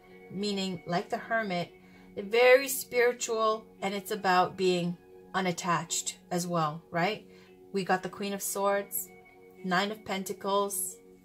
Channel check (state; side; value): identical; both; correlation 1.00